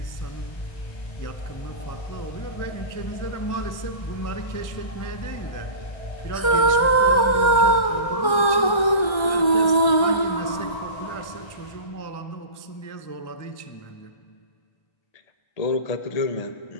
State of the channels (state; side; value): late; right; 1.3 ms